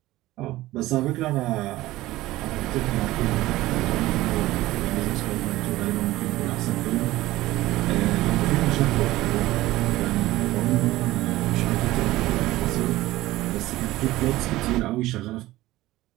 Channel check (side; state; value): left; quieter; 17.1 dB